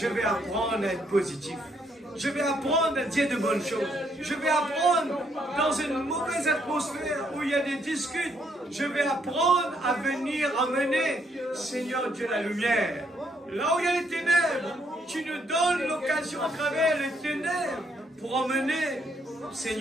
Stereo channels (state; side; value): normal; both; correlation 0.72